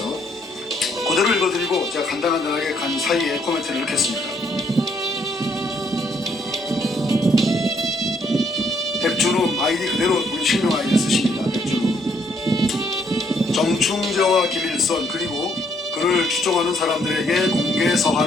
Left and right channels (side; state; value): both; normal; correlation 0.69